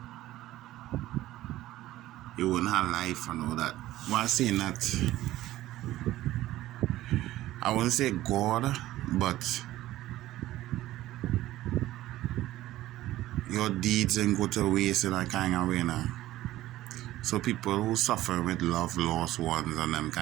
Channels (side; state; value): left; quieter; 15.4 dB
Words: you wouldn't have life and all that. While saying that, I wouldn't say God, but your deeds ain't go to waste in a kind of way now. So people who suffer with love, lost ones and them